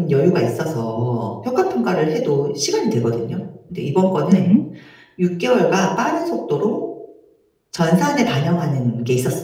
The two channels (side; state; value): both; identical; correlation 1.00